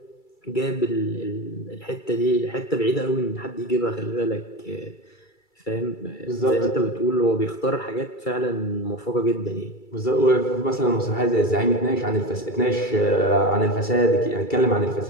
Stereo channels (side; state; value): right; late; 2.3 ms